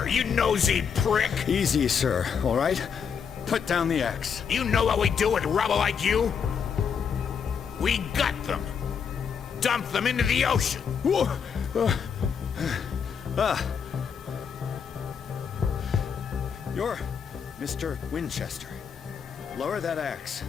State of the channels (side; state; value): right; quieter; 6.8 dB